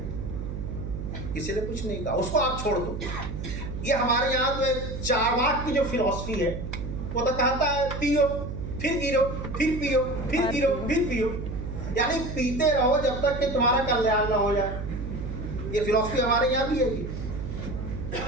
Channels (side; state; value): right; noise; hum, 6 dB below the sound